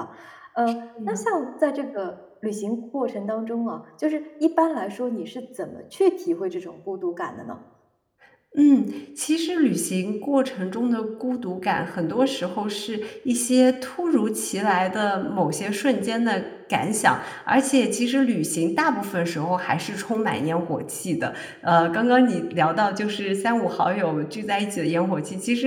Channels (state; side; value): identical; both; correlation 1.00